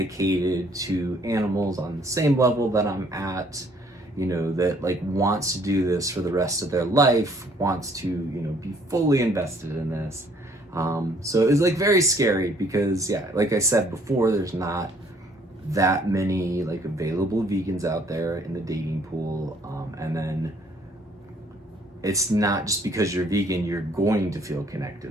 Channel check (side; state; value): both; normal; correlation 0.62